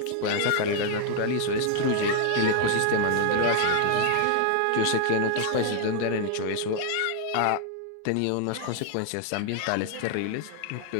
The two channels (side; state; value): both; different; correlation 0.00